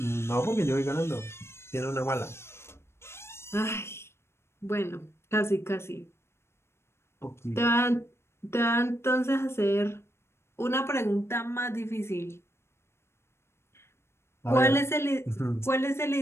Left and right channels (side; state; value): right; late; 0.12 ms